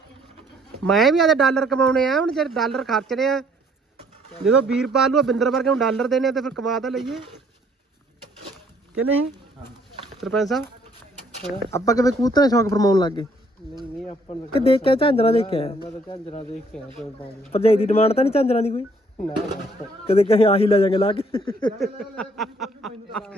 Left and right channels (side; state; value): both; normal; correlation 0.64